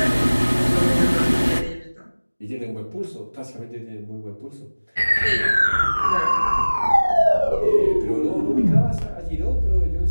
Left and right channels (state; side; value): inverted; both; correlation -1.00